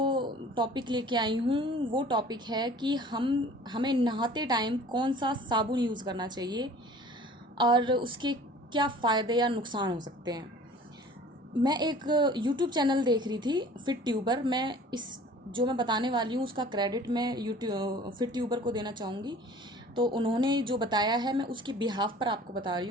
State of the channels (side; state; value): both; normal; correlation 0.47